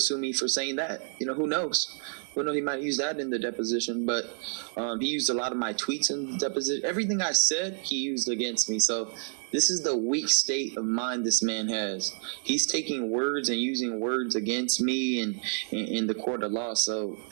sue me for saying that. You know, who knows? Who knows? He might use that in the deposition. But he used a lot of my tweets in the deposition. Everything I said, he used against me. So this is the weak state of mind this man has. He's taking words and using words against me in the court of law. So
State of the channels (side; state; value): left; silent; 59 dB below the other